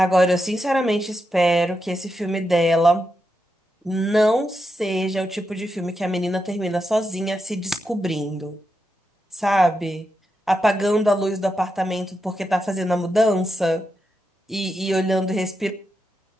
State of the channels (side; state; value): both; normal; correlation 0.86